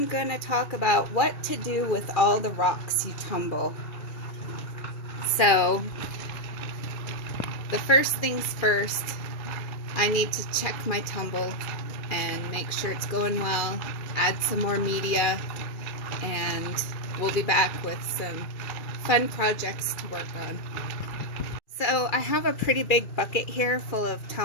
going to talk about what to do with all the rocks you tumble. So the first things first, I need to check my tumble and make sure it's going well, add some more media, and we'll be back with some fun projects to work on. So I have a pretty big bucket here full of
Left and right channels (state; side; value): late; right; 2.5 ms